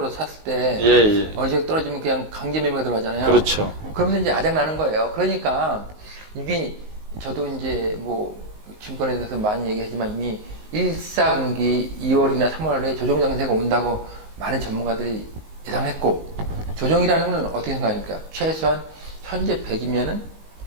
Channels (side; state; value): left; late; 19 ms